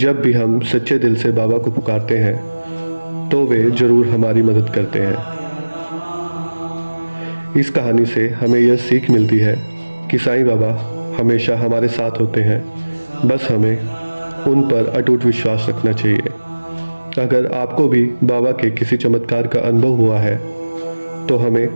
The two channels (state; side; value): inverted; both; correlation -1.00